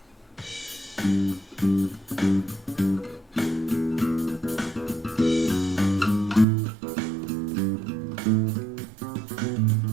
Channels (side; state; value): left; drops out; at 6.5 s